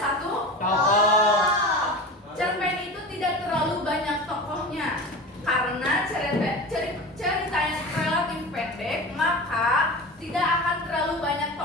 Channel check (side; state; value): both; normal; correlation 0.30